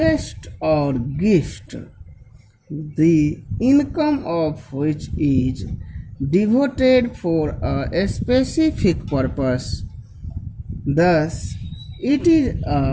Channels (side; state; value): both; identical; correlation 1.00